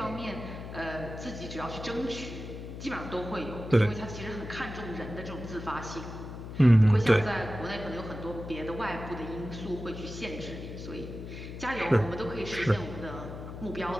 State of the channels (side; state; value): left; noise; hum, 9 dB below the sound